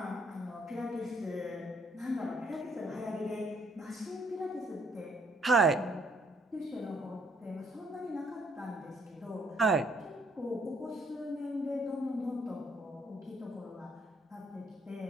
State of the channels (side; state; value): both; normal; correlation 0.67